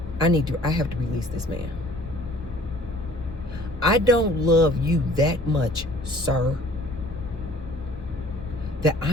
I have to release this man. I don't love you that much, sir, that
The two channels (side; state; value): both; normal; correlation 0.53